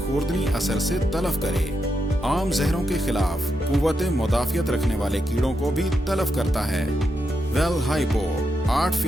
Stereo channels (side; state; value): both; normal; correlation 0.84